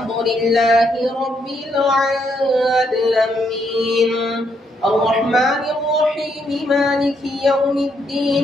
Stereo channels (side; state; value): both; normal; correlation 0.75